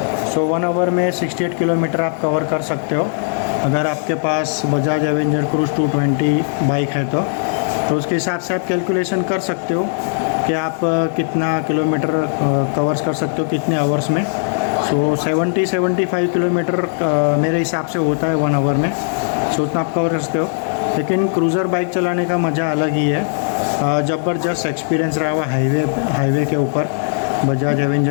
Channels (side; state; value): right; silent; digital silence